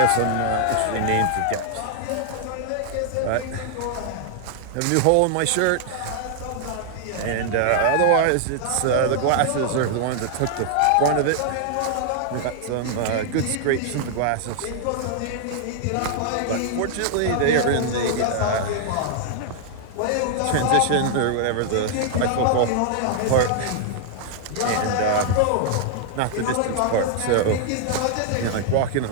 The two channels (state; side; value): different; both; correlation 0.00